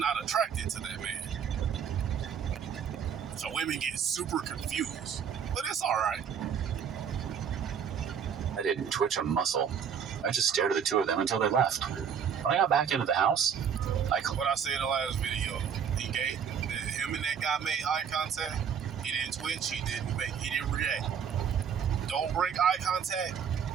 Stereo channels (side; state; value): left; quieter; 7.6 dB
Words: attracted to that man. So women get super confused, but it's all right. I didn't twitch a muscle. I just stared at the two of them until they left. When I got back into the house, what I said in the last video, him and that guy made eye contact. He didn't twitch. He didn't react. Don't break eye contact,